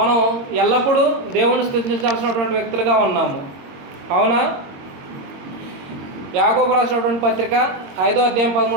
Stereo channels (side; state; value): left; late; 22 ms